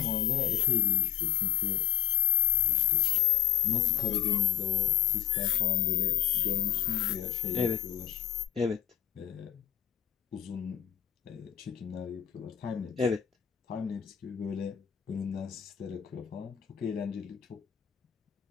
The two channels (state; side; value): quieter; right; 11.9 dB